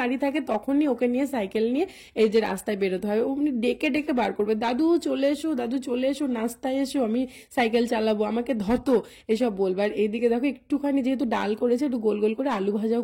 বাড়ি থাকে তখনই ওকে নিয়ে সাইকেল নিয়ে এই যে রাস্তায় বেরোতে হয়। উনি ডেকে ডেকে বার করবে, দাদু চলে এসো, দাদু চলে এসো, নাস্তায় এসো, আমি সাইকেল চালাবো, আমাকে ধতো, এসব বলবে। আর এইদিকে দেখো একটুখানি যেহেতু ডাল করেছে একটু গোল গোল করে আলু ভাজাও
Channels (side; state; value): both; identical; correlation 1.00